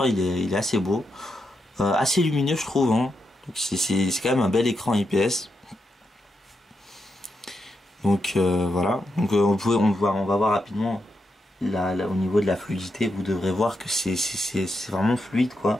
il est assez beau. Assez lumineux je trouve, hein. Donc c'est quand même un bel écran IPS. Donc voilà. Donc on va voir rapidement au niveau de la fluidité. Vous devrez voir que c'est vraiment fluide quoi.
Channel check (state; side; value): normal; both; correlation 0.83